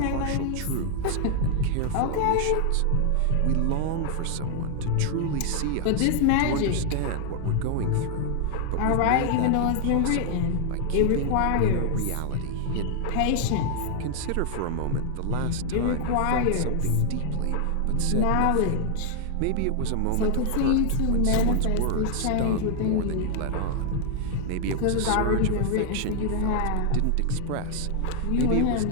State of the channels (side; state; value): both; different; correlation 0.00